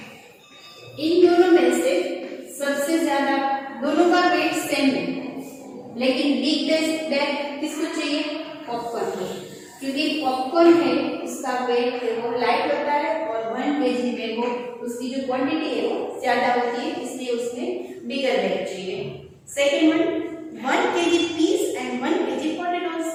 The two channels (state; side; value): identical; both; correlation 1.00